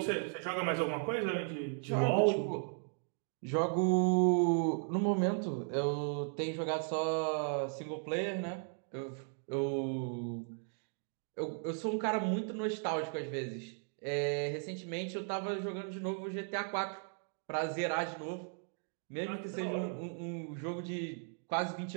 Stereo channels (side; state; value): left; silent; 54 dB below the other